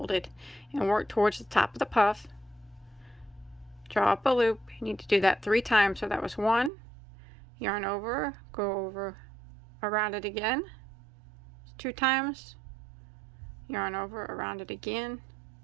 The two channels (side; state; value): left; drops out; at 6.7 s